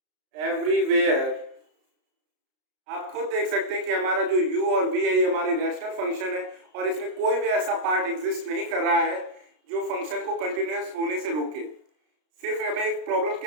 everywhere। आप खुद देख सकते हैं कि हमारा जो u और v है ये हमारी रैशनल फंक्शन है और इसमें कोई भी ऐसा पार्ट एग्जिस्ट नहीं कर रहा है जो फंक्शन को कंटिन्यूअस होने से रोके। सिर्फ हमें एक प्रॉब्लम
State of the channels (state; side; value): late; left; 33 ms